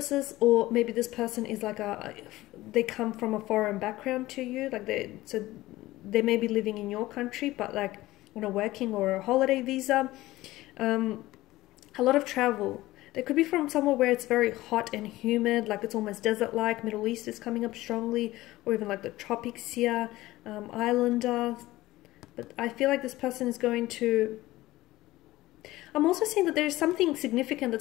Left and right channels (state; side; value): quieter; right; 17.4 dB